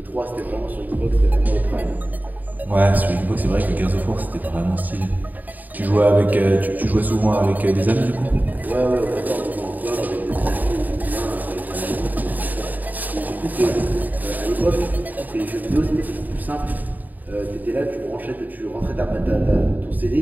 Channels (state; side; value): late; left; 0.083 ms